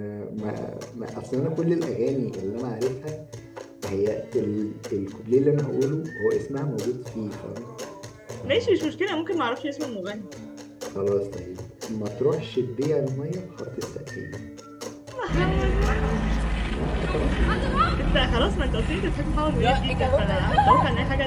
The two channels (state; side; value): identical; both; correlation 1.00